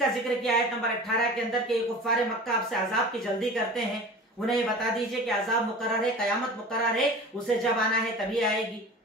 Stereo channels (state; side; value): normal; both; correlation 0.37